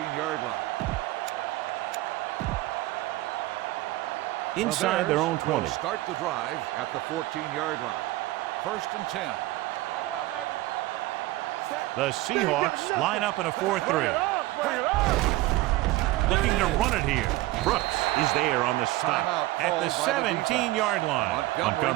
line. Inside their own 20. Start the drive at the 14-yard line. 1st and 10. Back it up, baby. The Seahawks line up in a 4-3. Looking to run it here. Brooks is there on the stop at the 17-yard line.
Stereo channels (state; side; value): quieter; left; 18.0 dB